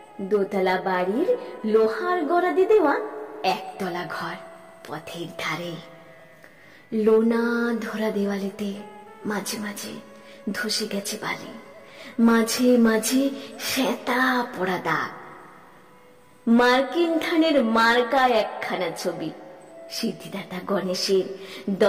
দোতলা বাড়ির লোহার গড়াদি দেওয়া একতলা ঘর পথের ধারে। লোনা ধরা দেওয়ালেতে মাঝে মাঝে ধসে গেছে বালি, মাঝে মাঝে শ্বেতা পড়া দাগ। মার্কিন ধানের মার্কা একখানা ছবি, সিদ্ধিদাতা গণেশের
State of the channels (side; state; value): both; identical; correlation 1.00